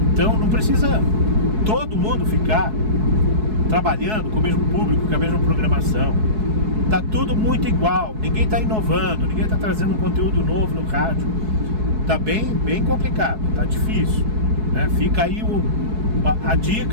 então não precisa todo mundo ficar trabalhando com o mesmo público, com a mesma programação. Tá tudo muito igual, ninguém tá inovando, ninguém tá trazendo um conteúdo novo no rádio. Tá bem complicado, tá difícil, né? Fica aí a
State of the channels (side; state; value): left; late; 4.7 ms